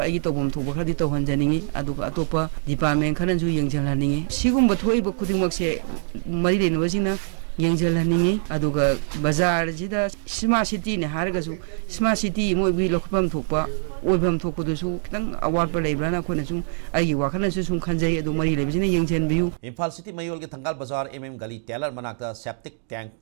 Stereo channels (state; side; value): silent; left; digital silence